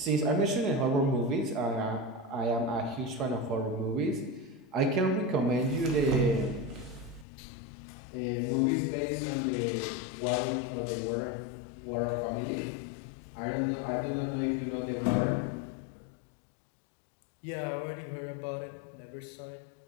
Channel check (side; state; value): right; drops out; at 7.2 s